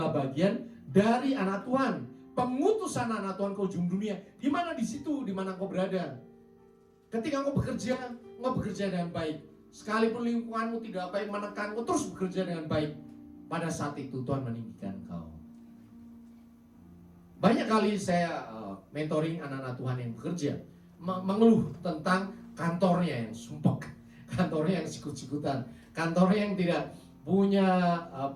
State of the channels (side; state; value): both; identical; correlation 1.00